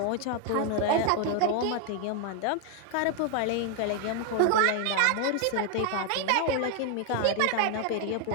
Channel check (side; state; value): both; different; correlation 0.00